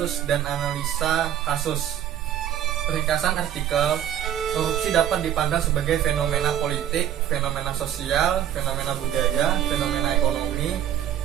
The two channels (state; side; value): quieter; left; 10.6 dB